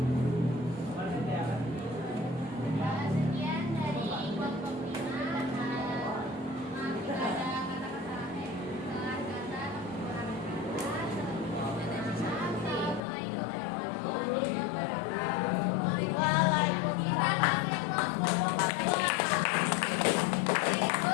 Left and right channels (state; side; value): drops out; right; at 13.0 s